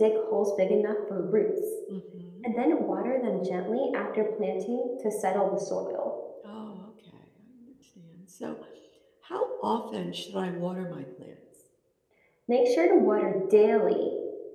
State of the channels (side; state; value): both; identical; correlation 1.00